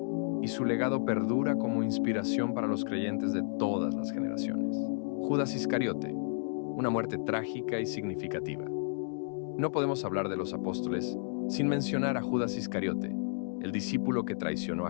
y su legado perdura como inspiración para los creyentes de todas las generaciones. Judas Iscariote, una muerte trágica y significativa. No podemos hablar de los apóstoles sin mencionar a Judas Iscariote, el discípulo que traicionó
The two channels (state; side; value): silent; right; digital silence